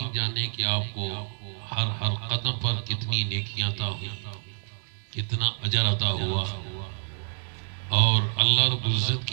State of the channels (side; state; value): left; silent; digital silence